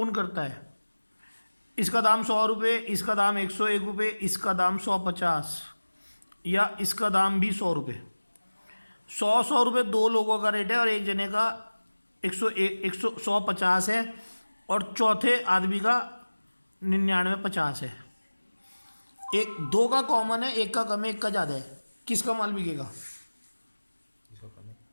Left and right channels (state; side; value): inverted; both; correlation -1.00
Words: करता है, इसका दाम 100 रुपये, इसका दाम 101 रुपये, इसका दाम 150, या इसका दाम भी 100 रुपये। 100 रुपये दो लोगों का रेट है और एक जने का 150 है, और चौथे आदमी का 99 50 है। एक दो का कॉमन है, एक का कम है, एक का ज़्यादा है, किसका माल बिकेगा।